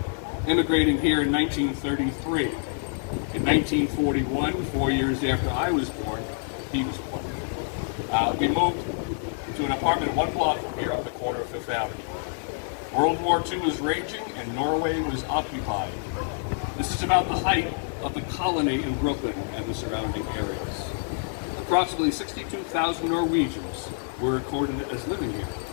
immigrating here in 1933. In 1941, 4 years after I was born, he was born. We moved to an apartment 1 block from here on the corner of Fifth Avenue. World War II was raging and Norway was occupied. This is about the height of the colony in Brooklyn and the surrounding areas. Approximately 62,000 Norwegians were recorded as living here.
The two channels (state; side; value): silent; right; digital silence